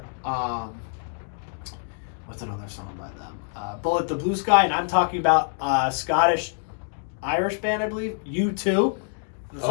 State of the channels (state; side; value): silent; right; digital silence